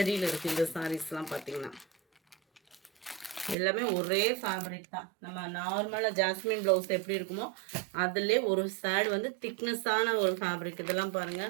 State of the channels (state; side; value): drops out; left; at 3.6 s